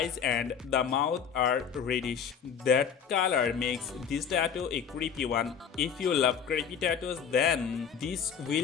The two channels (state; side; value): quieter; right; 7.3 dB